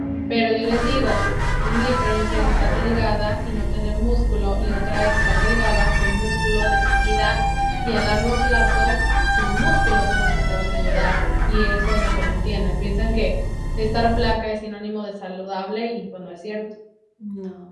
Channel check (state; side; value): identical; both; correlation 1.00